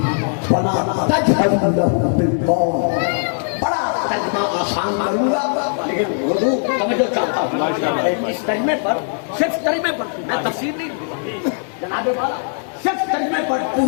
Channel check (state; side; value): silent; right; digital silence